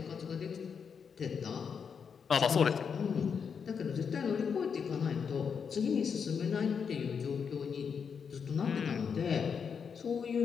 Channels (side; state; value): right; quieter; 6.5 dB